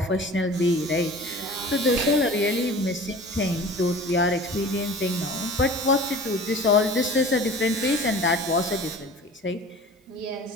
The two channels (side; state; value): both; normal; correlation 0.41